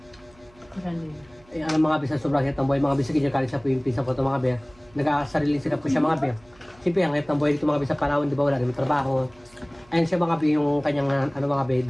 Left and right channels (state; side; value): noise; right; hum, 28 dB below the sound